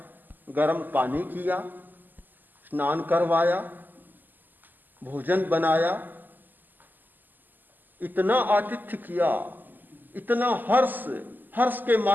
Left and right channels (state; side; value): late; left; 0.087 ms